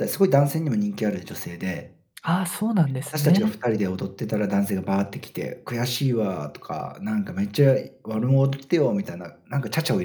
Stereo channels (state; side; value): identical; both; correlation 1.00